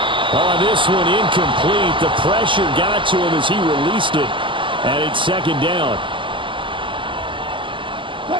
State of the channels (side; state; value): left; late; 0.24 ms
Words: Oh, this one incomplete. The pressure got to him as he released it. And it's 2nd down.